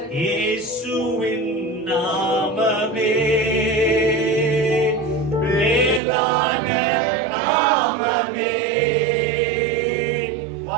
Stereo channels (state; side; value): drops out; left; at 6.0 s